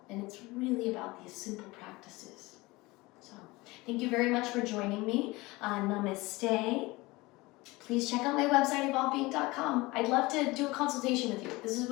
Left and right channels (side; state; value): right; quieter; 21.9 dB